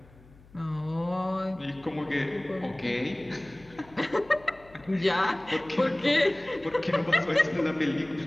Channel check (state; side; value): noise; left; hum, 25 dB below the sound